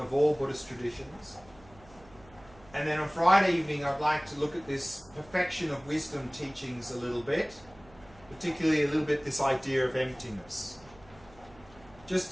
of all Buddhist traditions. And then on Friday evening I'd like to look at this perfection of wisdom teachings a little bit, particularly a little bit this idea of emptiness.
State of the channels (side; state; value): right; noise; hum, 24 dB below the sound